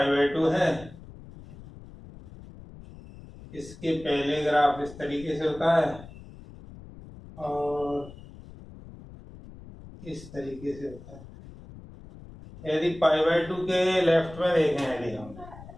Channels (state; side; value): noise; left; rumble, 17 dB below the sound